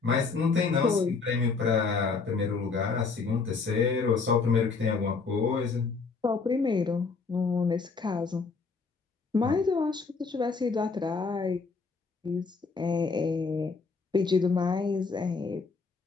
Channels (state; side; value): quieter; right; 4.6 dB